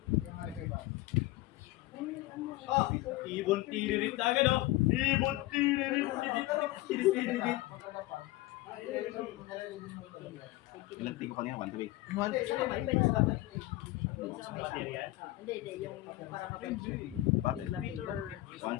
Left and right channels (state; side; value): quieter; right; 18.1 dB